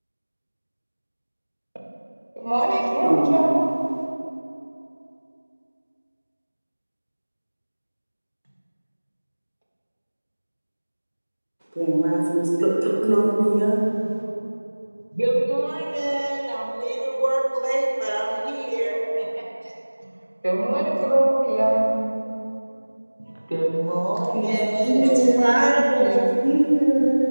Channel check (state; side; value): inverted; both; correlation -1.00